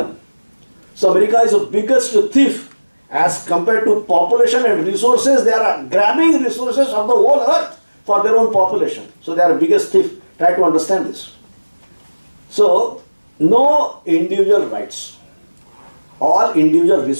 So America is the biggest thief. As compared to population and resources, they are grabbing resources of the whole earth for their own population. So they are the biggest thief. Try to understand this. So, no individual rights. All individual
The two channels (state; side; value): inverted; both; correlation -1.00